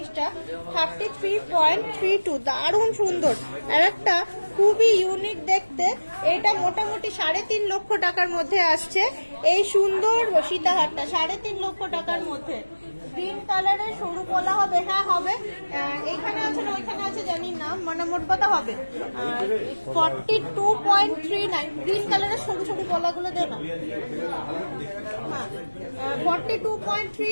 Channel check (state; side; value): inverted; both; correlation -1.00